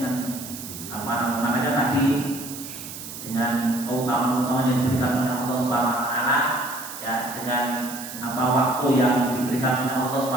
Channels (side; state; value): right; noise; hiss, 11 dB below the sound